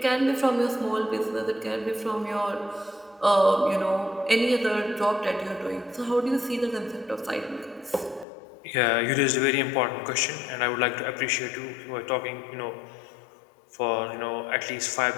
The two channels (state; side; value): drops out; right; at 8.2 s